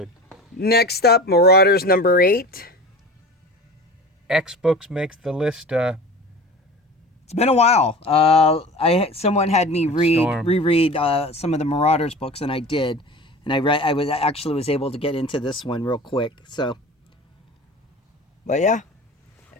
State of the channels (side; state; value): both; normal; correlation 0.36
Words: Next up, Marauders number 8. X Books makes the list. It's been a while. Someone had me reread some of the Marauders books, and I did. And I was able to get into this one real quick. So, but yeah,